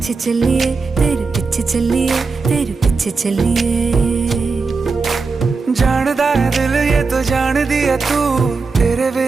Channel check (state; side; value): quieter; left; 4.4 dB